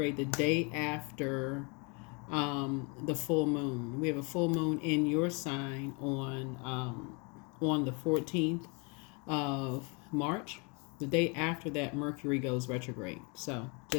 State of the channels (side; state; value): right; quieter; 32.3 dB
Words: the day after the full moon. We have a full moon in your sign on the 14th of March. The day after that, Mercury goes retrograde. So,